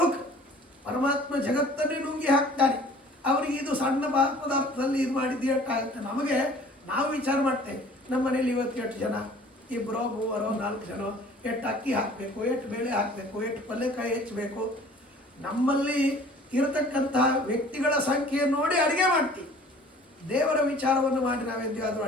ಪರಮಾತ್ಮ ಜಗತ್ತನ್ನೇ ನುಂಗಿ ಹಾಕ್ತಾನೆ. ಅವರಿಗೆ ಇದು ಸಣ್ಣ ಪದಾರ್ಥದಲ್ಲಿ ಇದು ಮಾಡಿದ್ದು ಎಷ್ಟಾಗುತ್ತೆ. ನಮಗೆ ನಾವು ವಿಚಾರ ಮಾಡ್ತೇವೆ, ನಮ್ಮ ಮನೇಲಿ ಇವತ್ತು ಎಷ್ಟು ಜನ, ಇಬ್ಬರೋ ಮೂವರೋ ನಾಲ್ಕು ಜನ, ಎಷ್ಟು ಅಕ್ಕಿ ಹಾಕಬೇಕು, ಎಷ್ಟು ಬೇಳೆ ಹಾಕಬೇಕು, ಎಷ್ಟು ಪಲ್ಯಕಾಯಿ ಹೆಚ್ಚಬೇಕು. ನಮ್ಮಲ್ಲಿ ಇರತಕ್ಕಂತಹ ವ್ಯಕ್ತಿಗಳ ಸಂಖ್ಯೆ ನೋಡಿ ಅಡುಗೆ ಮಾಡ್ತೀವಿ. ದೇವರ ವಿಚಾರವನ್ನು ಮಾಡಿ ನಾವೆಂದಾದರೂ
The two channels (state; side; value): normal; both; correlation 0.50